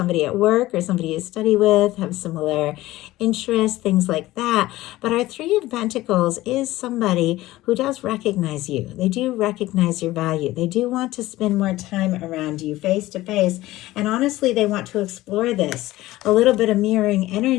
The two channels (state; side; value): quieter; right; 17.1 dB